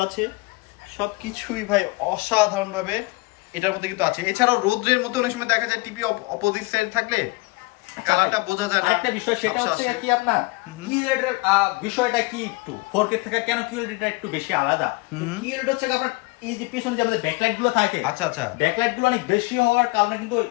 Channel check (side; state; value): right; quieter; 24.9 dB